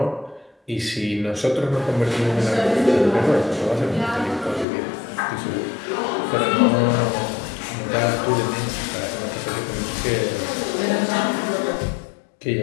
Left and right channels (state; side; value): drops out; right; at 4.7 s